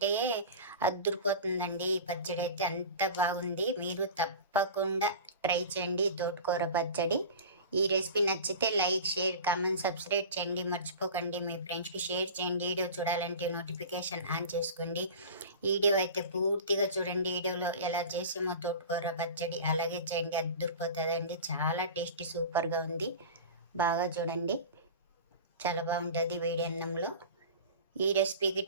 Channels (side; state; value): both; inverted; correlation -0.34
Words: అద్దురిపోతుందండి. ఈ పచ్చడి అయితే అంత బాగుంది. మీరు తప్పకుండా ట్రై చేయండి తోటకూర పచ్చడి. ఈ రెసిపీ నచ్చితే లైక్, షేర్, కామెంట్, సబ్స్క్రైబ్ చేయండి. మర్చిపోకండి. మీ ఫ్రెండ్స్కి షేర్ చేయండి. వీడియో చూడాలంటే నోటిఫికేషన్ ఆన్ చేసుకోండి. వీడియో అయితే పూర్తిగా చూడండి. వీడియోలో ఎలా చేసామో తోటకూర పచ్చడి అలాగే చేయండి, అద్దురిపోతుందండి. చాలా టేస్టీ, సూపర్గా ఉంది. బాగా చూడండి, చాలా బాగుంటుంది వేడి అన్నంలో. ఈ రెసిపీకి